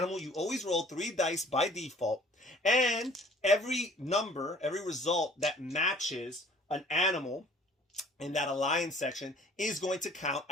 you always roll 3 dice by default. And every number, every result that matches an animal in that alliance section is going to count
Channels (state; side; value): normal; both; correlation 0.53